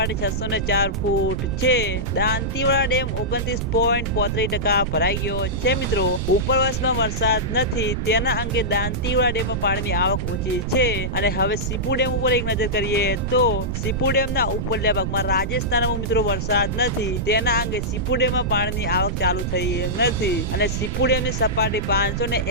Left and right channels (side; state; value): right; noise; rumble, 2 dB below the sound